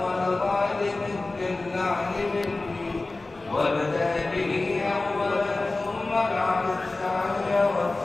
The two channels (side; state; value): right; quieter; 3.2 dB